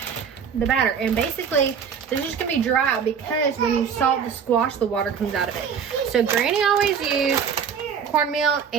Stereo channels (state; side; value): quieter; left; 7.0 dB